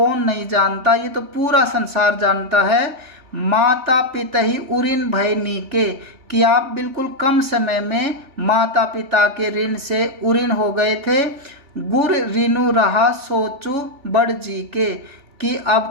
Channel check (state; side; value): late; left; 2.6 ms